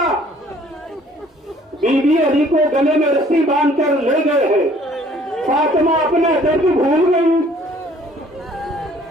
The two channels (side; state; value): both; normal; correlation 0.57